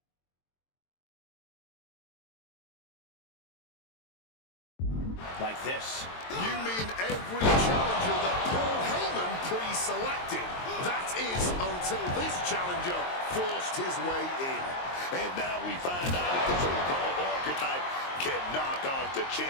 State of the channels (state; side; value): late; right; 22 ms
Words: like this. You mean every challenger that Paul Heyman pre-selected? That is, until this challenger forced his way in. And now we find out if the so-called archetype can knock off the